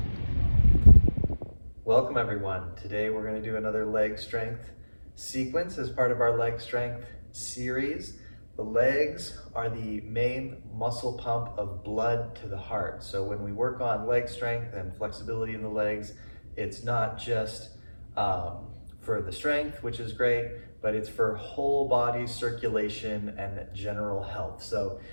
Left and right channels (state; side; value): inverted; both; correlation -1.00